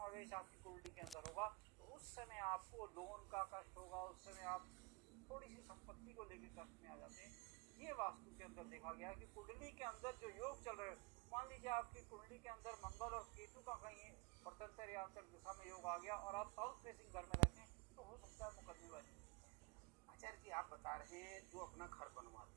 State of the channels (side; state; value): left; quieter; 26.1 dB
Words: आपकी कुंडली के अंदर होगा तो उस समय आपको लोन का कष्ट होगा, उस समय आप थोड़ी सी संपत्ति को लेकर कष्ट में आ जाते हैं। ये वास्तु के अंदर देखा गया कि कुंडली के अंदर जो योग चल रहे, मान लीजिए आपकी कुंडली के अंदर मंगल और केतु का कहीं प्रत्यंतर या अंतर दिशा में योग आ गया और आप साउथ फेसिंग घर में रहते हैं, तो हो सकता है मुकदमेबाजी। आचार्य जी, आप बता रहे हैं जो अपना घर